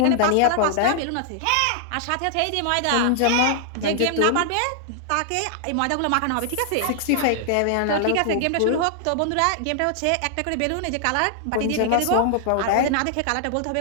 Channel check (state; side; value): different; both; correlation -0.01